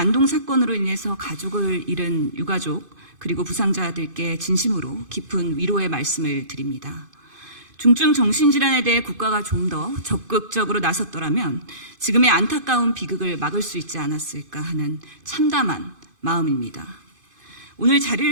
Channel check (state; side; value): late; left; 2.5 ms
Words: 사건으로 인해서 가족을 잃은 유가족 그리고 부상자들께 진심으로 깊은 위로의 말씀을 드립니다. 중증 정신질환에 대해 국가가 좀 더 적극적으로 나섰더라면 지금의 안타까운 비극을 막을 수 있지 않았을까 하는 참담한 마음입니다. 오늘